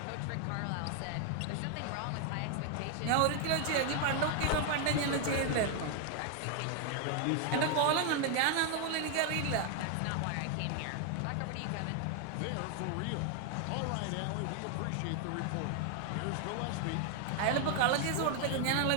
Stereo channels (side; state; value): both; different; correlation 0.00